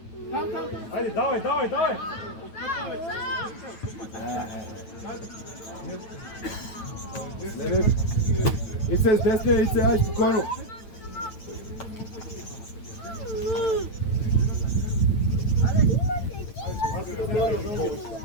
Айде, давай, давай, давай! Не, Ице, с десния, Ице, ай, спокойно!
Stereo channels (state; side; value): late; right; 9.0 ms